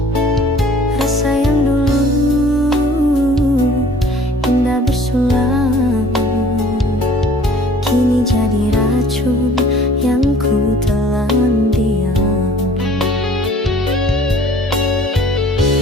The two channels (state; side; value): normal; both; correlation 0.51